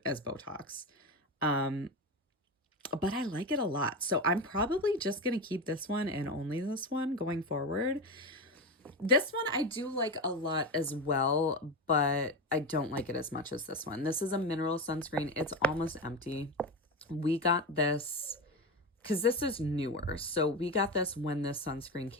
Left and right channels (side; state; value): both; normal; correlation 0.19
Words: as Botox. Um, but I like it a lot. So I'm probably just going to keep this one and only this one going forward. This one I do like a lot as well, but I don't like it as much as this one. This is a mineral sunscreen. It's almost empty. We got this because this is newer. So we got this when this sunscreen